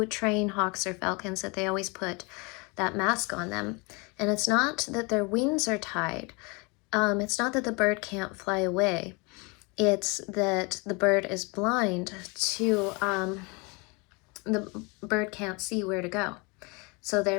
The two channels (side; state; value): right; quieter; 29.3 dB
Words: train hawks or falcons, that they always put that mask on them. And it's not that their wings are tied. It's not that the bird can't fly away. It's that the bird is blind to, the bird can't see where to go. So